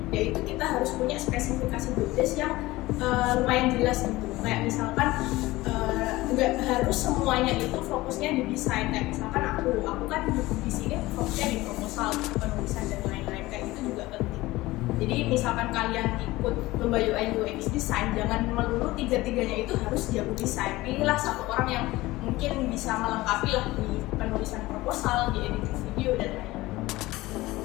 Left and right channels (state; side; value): quieter; right; 19.0 dB